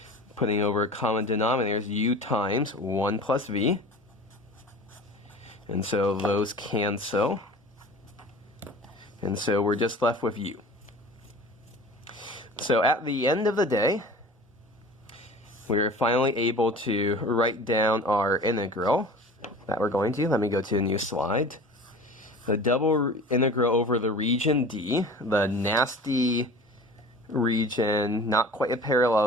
Putting over a common denominator is u times 1 plus v. And so those cancel. And so we're just left with u. So at the end of the day, we were finally able to write down our integral that we're going to. Let me go to a new slide. The double integral over the region D, the nasty region, not quite a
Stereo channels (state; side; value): normal; both; correlation 0.40